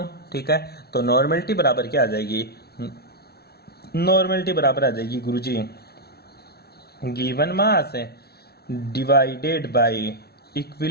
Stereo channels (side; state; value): right; late; 0.46 ms